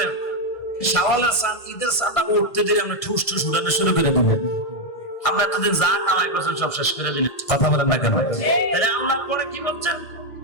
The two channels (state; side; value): late; right; 1.6 ms